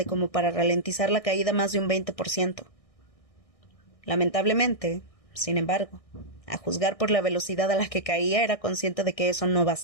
como para ralentizar la caída más de un 20%. Lamentablemente, sin embargo, a juzgar por la velocidad a la que caía, era consciente de que eso no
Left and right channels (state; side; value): late; right; 1.6 ms